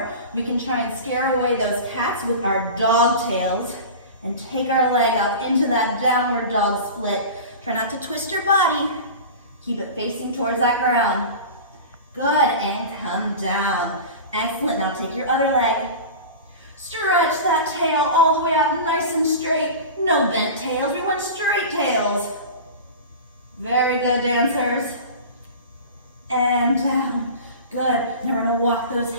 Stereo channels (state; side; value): inverted; both; correlation -0.32